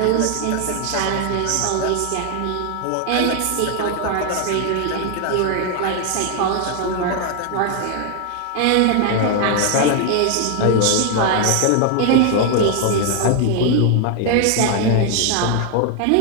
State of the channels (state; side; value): different; both; correlation 0.00